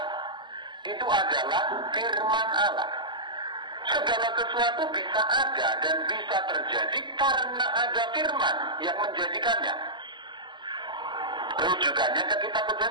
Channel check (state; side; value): late; left; 0.22 ms